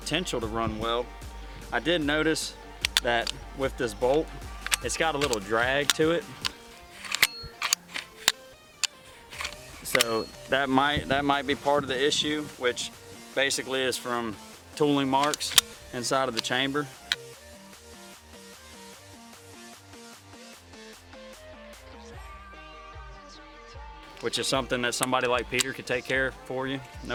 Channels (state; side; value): identical; both; correlation 1.00